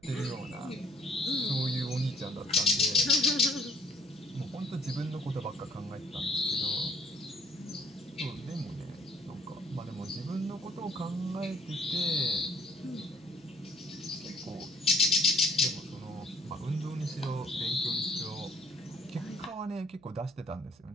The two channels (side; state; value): right; noise; hum, 28 dB below the sound